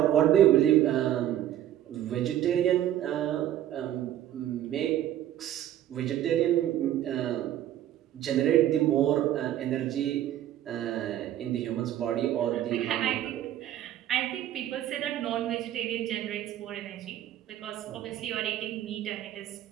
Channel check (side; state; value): left; quieter; 12.1 dB